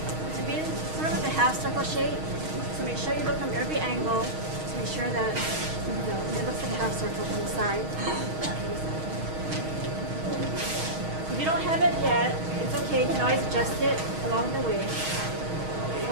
be sort of like a half circle shape. So make sure you look from every angle to make sure that it looks like a half circle from the side. If you don't have it yet, it's okay. You can always adjust it along the way.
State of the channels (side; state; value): left; late; 6.4 ms